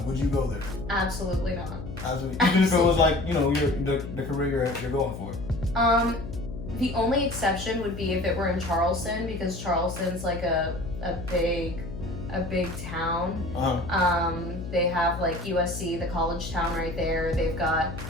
would you go there? Absolutely not. Absolutely. Even if it was like, you know, the career you're going for. The only exception would be if it were in Charleston, because Charleston's like a big town. They have like USC, the college town right there. They've got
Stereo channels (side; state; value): left; noise; hum, 9 dB below the sound